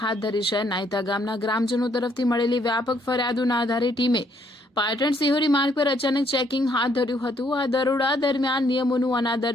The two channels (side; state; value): both; normal; correlation 0.69